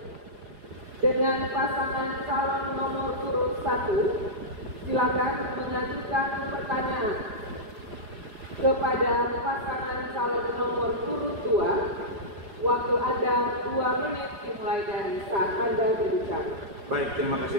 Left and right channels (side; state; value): left; late; 4.9 ms